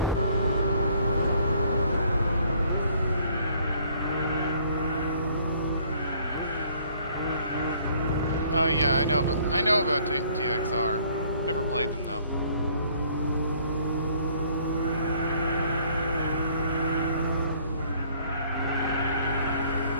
Oh yeah, I know about TXR. Never played them though.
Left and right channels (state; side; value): inverted; both; correlation -0.60